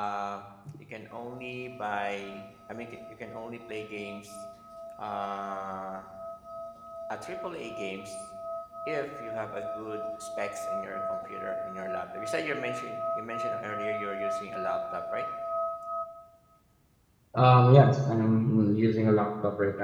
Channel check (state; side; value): identical; both; correlation 1.00